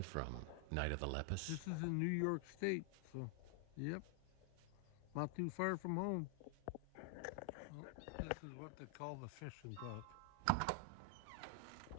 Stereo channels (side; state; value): both; different; correlation 0.00